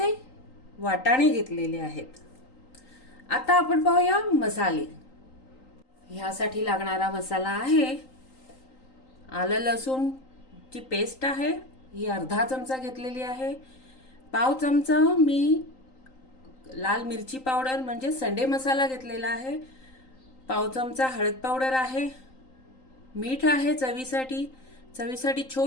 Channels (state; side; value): late; right; 3.8 ms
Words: वाटाणे घेतलेले आहेत. आता आपण पाहूया मसाले. ह्यासाठी लागणारा मसाला आहे आलं लसूणची पेस्ट आहे, ही अर्धा चमचा घेतलेली आहे. पाव चमचा मी लाल मिरची पावडर म्हणजे संडे मसाला घेतलेला आहे. पाव चमचा हळद पावडर आहे. मीठ आहे चवीसाठी